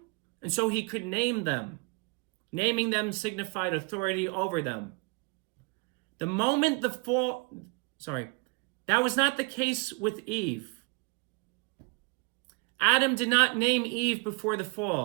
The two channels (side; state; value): left; quieter; 31.2 dB